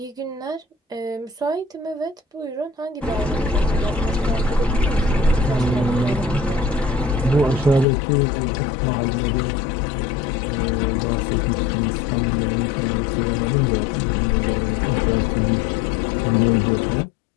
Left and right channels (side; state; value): right; drops out; at 7.9 s